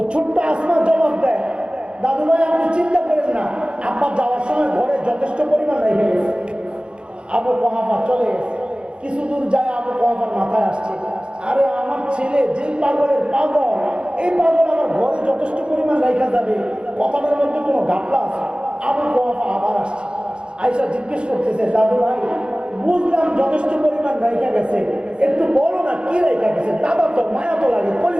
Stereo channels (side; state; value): left; late; 0.054 ms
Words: ছোট্ট আসমা জবাব দেয়, দাদু ভাই আপনি চিন্তা করেন না, আব্বা যাওয়ার সময় ঘরে যথেষ্ট পরিমাণ রেখে গেছে। আবু কুহাফা চলে গেছে, কিছু দূর যায় আবু কুহাফার মাথায় আসছে, আরে আমার ছেলে যেই পাগলের পাগল, এই পাগল আমার ঘরে যথেষ্ট পরিমাণ রেখা যাবে, কথাটার মধ্যে কোনো ঘাপলা আছে। আবু কুহাফা আবার আসছে, আয়েশা জিজ্ঞেস করতেছে, দাদু ভাই বুঝলাম যথেষ্ট পরিমাণ রেখা গেছে, একটু বলো না কি রেখা গেছে, দাদা তো মায়া তো লাগে,